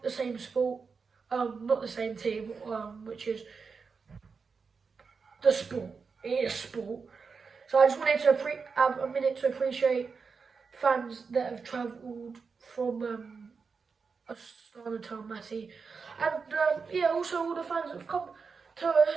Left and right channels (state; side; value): quieter; left; 5.2 dB